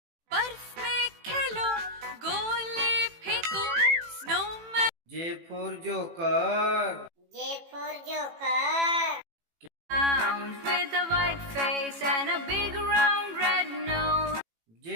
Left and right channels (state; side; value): late; left; 18 ms